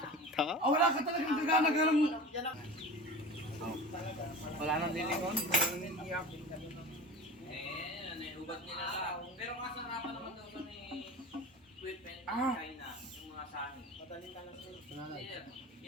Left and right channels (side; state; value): both; normal; correlation 0.34